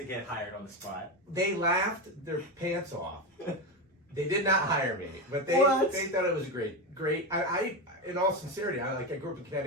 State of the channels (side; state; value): both; normal; correlation 0.15